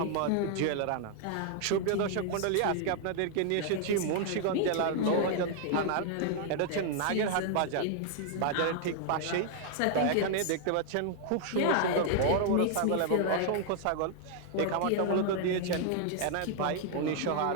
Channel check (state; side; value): different; both; correlation 0.00